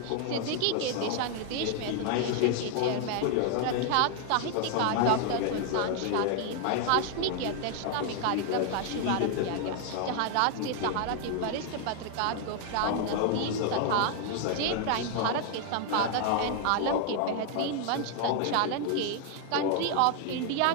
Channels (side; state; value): both; different; correlation 0.00